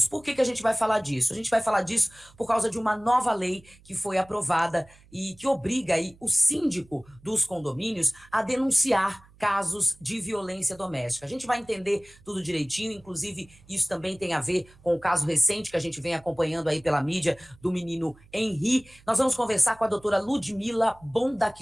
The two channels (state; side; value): noise; right; hum, 26 dB below the sound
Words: Por que a gente vai falar disso? A gente vai falar disso por causa de uma nova lei que foi aprovada e que obriga aí o síndico dos condomínios a denunciar casos de violência doméstica. A gente vai entender tudo direitinho, inclusive isso também tem a ver com o caso recente que a gente vem acompanhando aí pela mídia do menino Henri. Nós vamos conversar com a doutora Ludmila